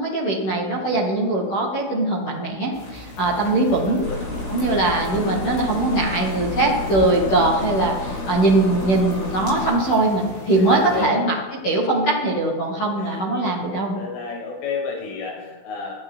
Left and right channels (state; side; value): late; right; 16 ms